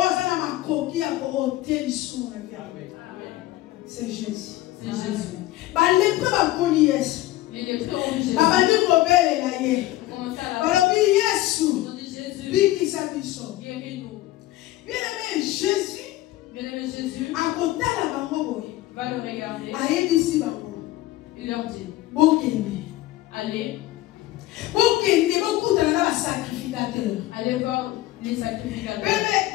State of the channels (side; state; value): right; quieter; 16.3 dB